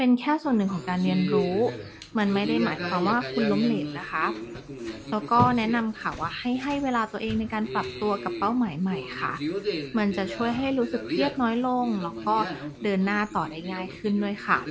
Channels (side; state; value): both; identical; correlation 1.00